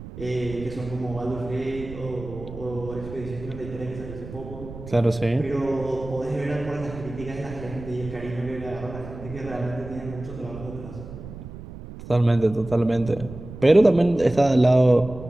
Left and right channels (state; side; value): noise; right; rumble, 13 dB below the sound